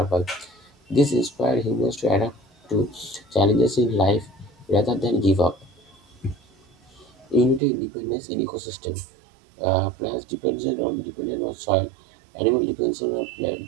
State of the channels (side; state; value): left; drops out; at 7.6 s